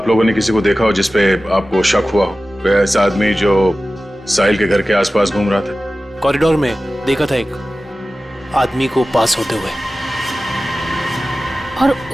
लोगों ने किसी को देखा हो जिसपे आपको शक हुआ हो? कोई ऐसा आदमी जो साहिल के घर के आसपास घूम रहा था? कॉरिडोर में देखा था एक आदमी को पास होते हुए। और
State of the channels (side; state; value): both; normal; correlation 0.95